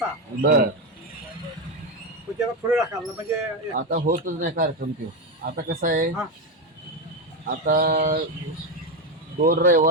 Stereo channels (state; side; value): normal; both; correlation 0.11